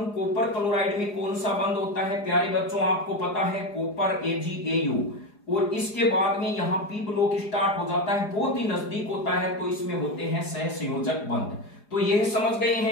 कॉपर क्लोराइड में कौन सा बंध होता है प्यारे बच्चों, आपको पता है कॉपर AgAu, और इसके बाद में यहाँ पी ब्लॉक स्टार्ट हो जाता है, बहुत ही नजदीक होता है, तो इसमें होते हैं सह संयोजक बंध। तो यह समझ गए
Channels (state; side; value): late; right; 4.8 ms